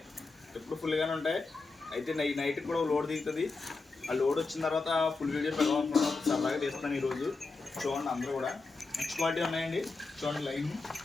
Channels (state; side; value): quieter; right; 3.9 dB